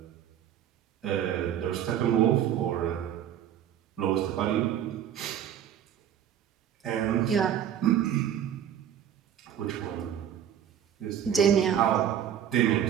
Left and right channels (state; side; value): quieter; left; 9.9 dB